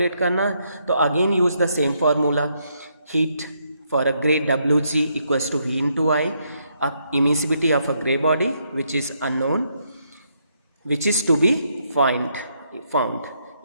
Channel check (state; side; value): inverted; both; correlation -0.75